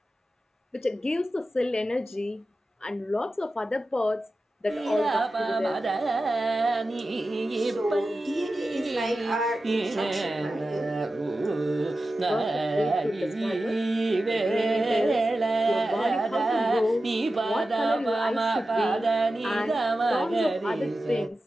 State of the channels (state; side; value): normal; both; correlation 0.93